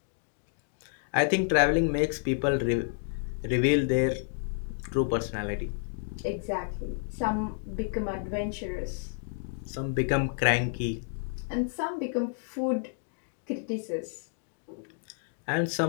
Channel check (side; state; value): right; silent; digital silence